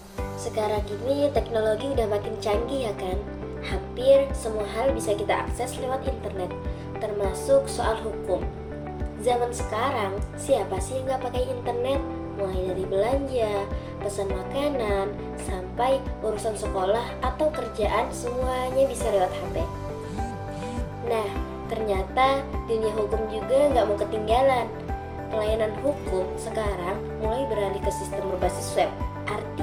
sekarang ini teknologi udah makin canggih ya kan? Hampir semua hal bisa kita akses lewat internet, termasuk soal hukum. Zaman sekarang, siapa sih yang nggak pakai internet? Mulai dari belanja, pesan makanan, sampai urusan sekolah atau kerjaan semuanya bisa lewat HP. Nah, ternyata dunia hukum juga nggak mau ketinggalan. Pelayanan hukum sekarang mulai beralih ke sistem berbasis web.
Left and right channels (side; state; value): both; identical; correlation 1.00